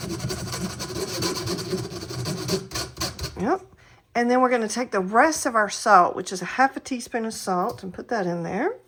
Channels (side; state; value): both; identical; correlation 1.00